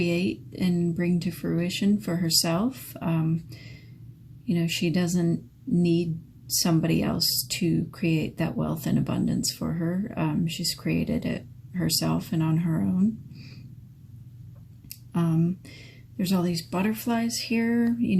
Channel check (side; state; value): both; identical; correlation 1.00